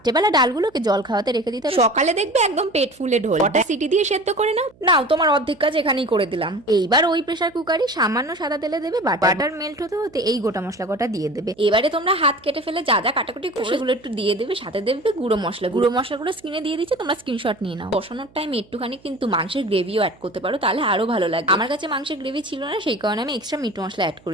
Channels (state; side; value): noise; right; hum, 29 dB below the sound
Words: ডালগুলোকে জল খাওয়াতে রেখে দিতে হবে, সকালে দেখবে একদম পেট ফুলে ঢোল। কটা সিটি দিয়ে সেদ্ধ করে নাও। নাও, তোমার অর্ধেক কাজ এখানেই করে দিলাম। এইবার ওই প্রেসার কুকারে সামান্য সাদা তেলে দেবে বাটার মেল্ট হতে হতে এই গোটা মশলা কটা দিয়ে দেবে। এবারে তোমরা হাত কেটে ফেলে যা যা কাটাকুটি করে সেগুলো একটু দিয়ে দেবে, সাথে দেবে গুঁড়ো মশলাগুলো স্ক্রিনে দিয়ে দিচ্ছে, তোমরা স্ক্রিনশট নিয়ে নাও। বসানোর টাইম একটুখানি কিন্তু মাংসের গ্রেভিও অ্যাড করতে পারো, তাহলে আরো ভালো লাগে। আমার কাছে মাংসের গ্রেভি ছিল না, সেই কারণে আমি এক্সট্রা মিট মশলা অ্যাড